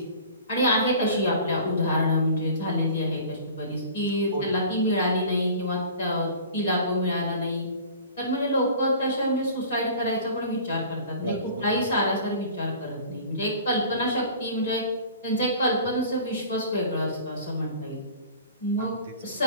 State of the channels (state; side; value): inverted; both; correlation -0.43